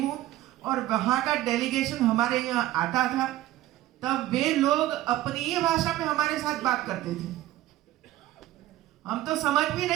हूं और वहां का डेलीगेशन हमारे यहाँ आता था, तब वे लोग अपनी ही भाषा में हमारे साथ बात करते थे। हम तो समझ भी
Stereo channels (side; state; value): left; quieter; 15.0 dB